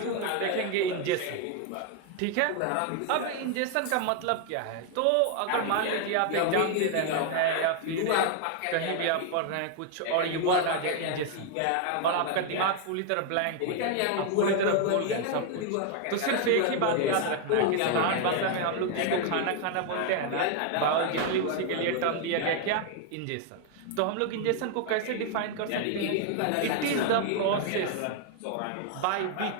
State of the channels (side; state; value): both; different; correlation 0.00